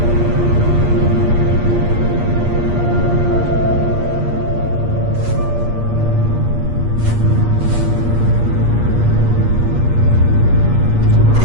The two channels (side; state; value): left; late; 8.5 ms